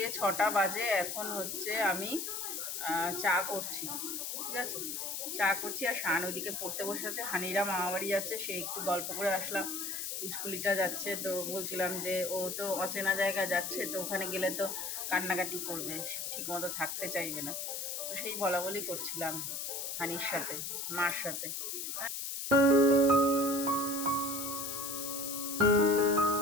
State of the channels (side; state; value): left; noise; hiss, 4 dB below the sound